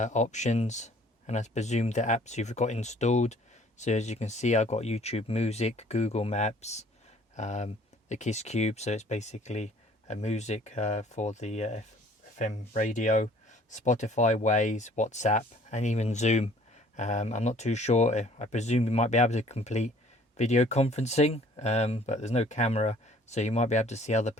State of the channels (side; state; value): both; normal; correlation 0.55